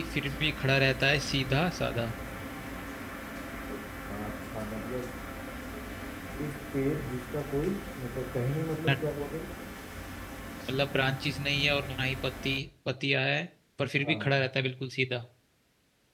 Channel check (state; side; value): identical; both; correlation 1.00